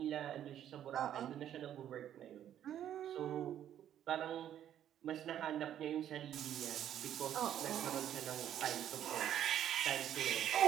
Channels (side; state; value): left; quieter; 10.7 dB